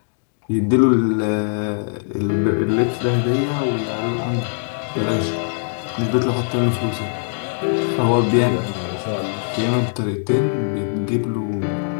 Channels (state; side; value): silent; right; digital silence